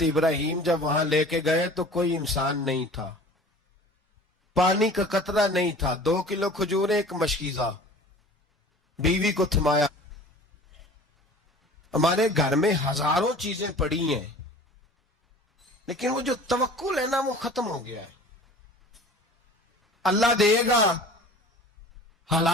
ابراہیم جب وہاں لے کے گئے تو کوئی انسان نہیں تھا، پانی کا قطرہ نہیں تھا، 2 کلو کھجور، ایک مشکیزہ، بیوی کو تھمایا۔ ہمارے گھر میں ہزاروں چیزیں پڑی ہیں، لیکن وہ جو توکل ہے نا وہ ختم ہو گیا ہے۔ اللہ دے گا،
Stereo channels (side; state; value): both; normal; correlation 0.43